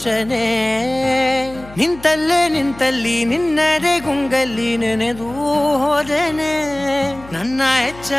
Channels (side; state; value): left; noise; hum, 19 dB below the sound